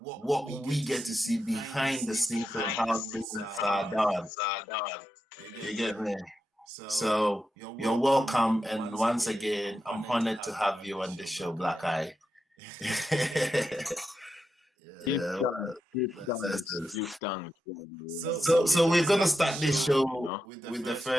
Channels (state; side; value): normal; both; correlation 0.88